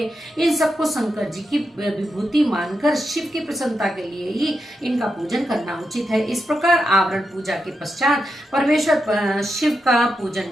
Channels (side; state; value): both; normal; correlation 0.86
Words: इन सबको शंकर जी की विभूति मानकर शिव की प्रसन्नता के लिए ही इनका पूजन करना उचित है। इस प्रकार आवरण पूजा के पश्चात परमेश्वर शिव का पूजन